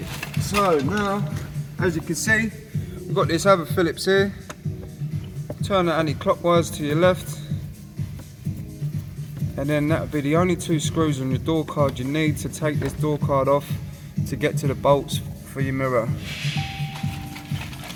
So now, as you can see, we've got this other Phillips here. Turn it anti-clockwise to your left. And then that would be the only two screws on your door card you need to take this door card off to get to the bolts for your mirror.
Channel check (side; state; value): both; identical; correlation 1.00